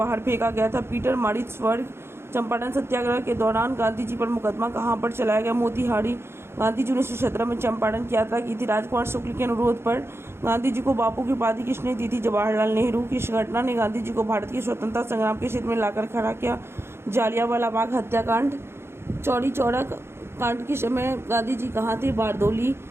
फेंका गया था? Peter Maritzburg. चंपारण सत्याग्रह के दौरान गांधी जी पर मुकदमा कहां पर चलाया गया? मोतिहारी। गांधी जी ने 1917 में चंपारण की यात्रा की थी। राजकुमार शुक्ल के अनुरोध पर गांधी जी को बापू की उपाधि किसने दी थी? जवाहरलाल नेहरू। किस घटना ने गांधी जी को भारत के स्वतंत्रता संग्राम के क्षेत्र में लाकर खड़ा किया? जालियांवाला बाग हत्याकांड। चौरी चौरा कांड के समय गांधी जी कहाँ थे? बारदोली।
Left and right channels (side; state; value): left; late; 0.12 ms